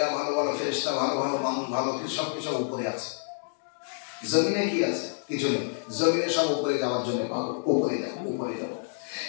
ভালো ভালো ফেরেশতা, ভালো ভালো মানুষ, ভালো সব কিছু উপরে আছে। জমিনে কি আছে? কিছু নেই। জমিনে সব উপরে যাওয়ার জন্য পাবো, উপরে যাবো।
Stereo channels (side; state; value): right; silent; digital silence